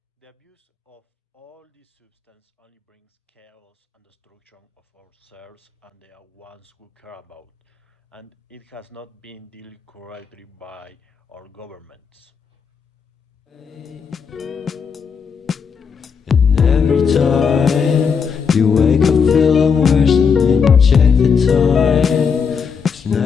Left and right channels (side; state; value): right; quieter; 6.2 dB